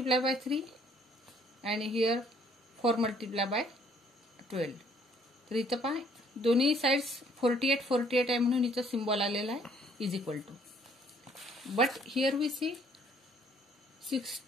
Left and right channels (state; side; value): normal; both; correlation 0.62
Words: 3 आणि हिअर 4 × 12. तर इथं पहा दोन्ही साइड्स 48 आहे म्हणून इथं सिम्बॉल आलेला आहे = but here we C